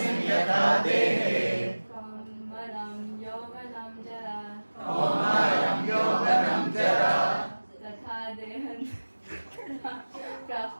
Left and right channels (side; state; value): both; inverted; correlation -1.00